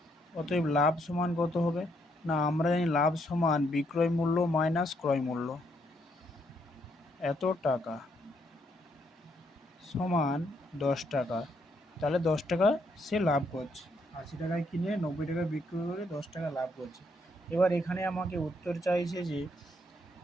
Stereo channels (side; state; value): both; normal; correlation 0.74